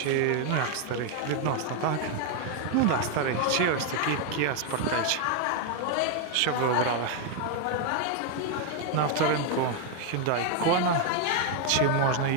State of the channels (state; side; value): different; both; correlation 0.01